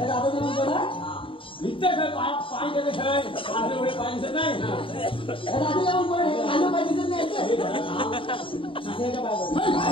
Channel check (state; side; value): late; right; 0.25 ms